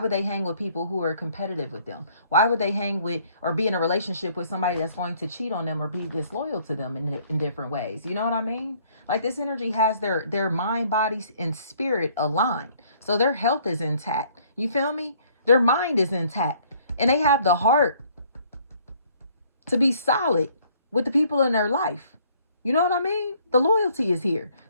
they hang with people who are competitive with them? Why would they hang with or be in a relationship with somebody that's going to cheat on them or be disloyal to them in different ways? You know what I mean? Like, this energy has their mind, body, and spirit aligned. So their health is intact. You feel me? Their mind is intact. And they have the heart to be solid with the people in their life. You know what I mean? The loyalty is here.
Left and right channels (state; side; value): inverted; both; correlation -0.61